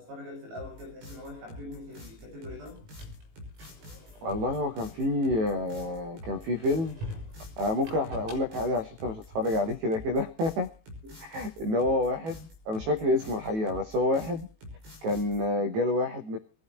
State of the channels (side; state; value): left; late; 18 ms